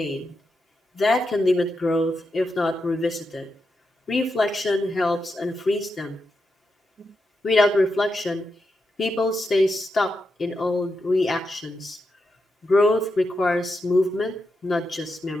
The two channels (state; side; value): normal; both; correlation 0.86